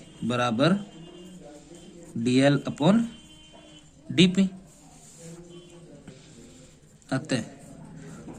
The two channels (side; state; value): both; identical; correlation 1.00